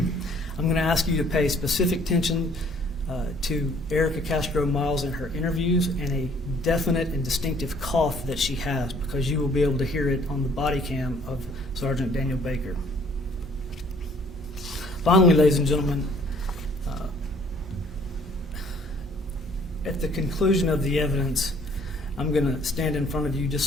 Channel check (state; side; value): normal; both; correlation 0.59